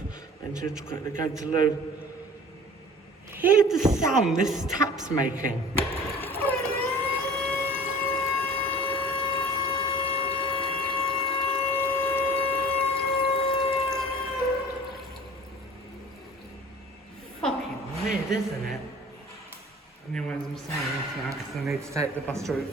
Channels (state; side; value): normal; both; correlation 0.44